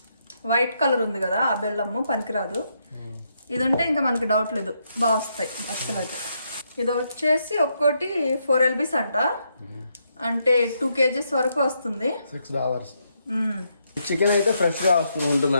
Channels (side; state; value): both; inverted; correlation -0.78